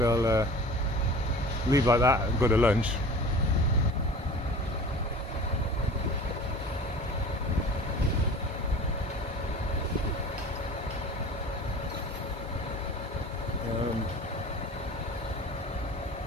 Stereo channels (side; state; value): both; normal; correlation 0.40